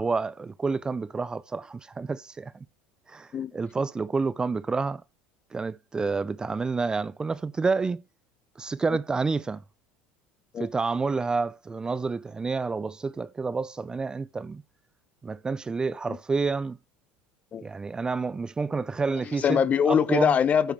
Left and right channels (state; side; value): normal; both; correlation 0.81